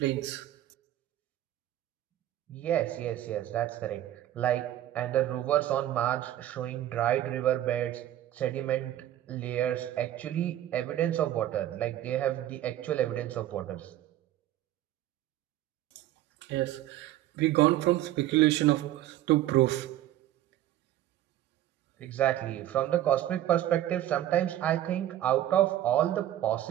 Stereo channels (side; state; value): left; quieter; 13.1 dB